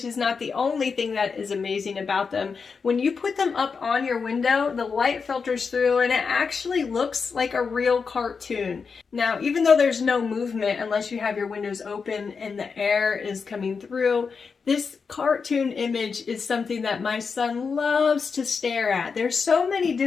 is not the only thing that is amazing about them. When you put them up on your window, the light filters through and it actually looks like a real cartoon. Now, even though there's no movement unless you have your windows open and the air is coming through, this cartoon image is something that my son loves to stare at. There's so many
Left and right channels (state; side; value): quieter; right; 5.4 dB